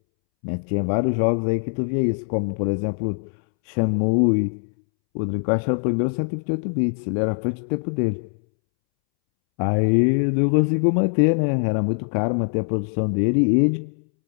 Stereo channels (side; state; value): right; silent; 64 dB below the other